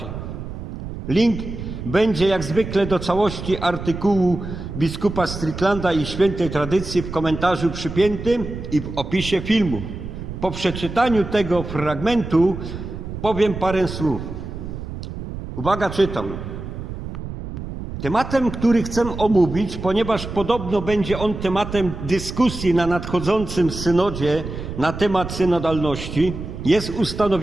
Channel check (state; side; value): noise; right; rumble, 8 dB below the sound